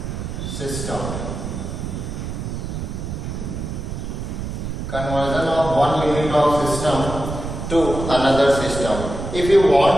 system. Conversion of 1 unit of system to another system. If you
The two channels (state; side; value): noise; right; rumble, 6 dB below the sound